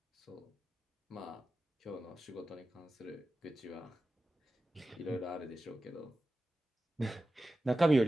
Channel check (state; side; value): normal; both; correlation 0.94